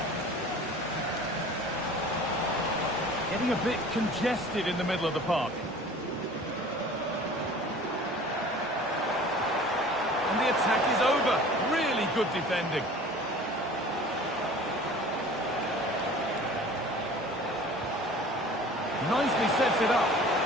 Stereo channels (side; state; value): both; normal; correlation 0.44